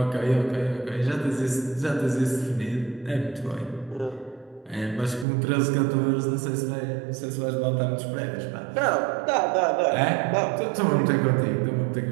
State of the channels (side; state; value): left; drops out; at 5.2 s